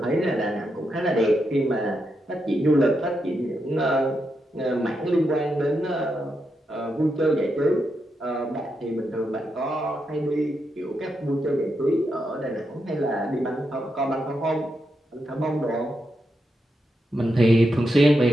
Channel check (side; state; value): both; normal; correlation 0.84